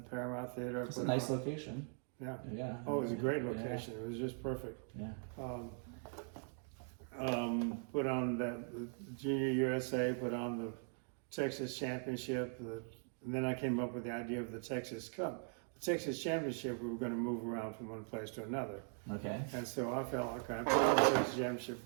Paramount Theater. It's a nice location. Yeah. Yeah. Oh, it was a great location. It was just perfect. Yeah. Put on the Junior USA, put on the Texas Championship, and then I came up with the idea of the Texas Cup. The Texas Championship, we were going to move around from one place to another. Okay. And so I felt like I put on the Texas Championship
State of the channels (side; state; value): left; silent; 51 dB below the other